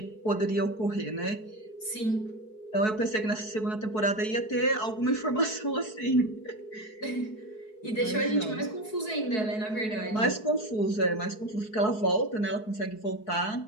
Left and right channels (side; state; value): right; late; 4.7 ms